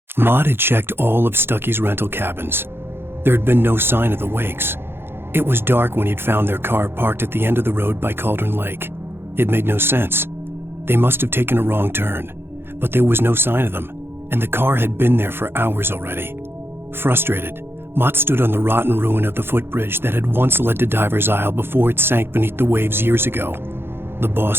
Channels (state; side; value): late; left; 0.11 ms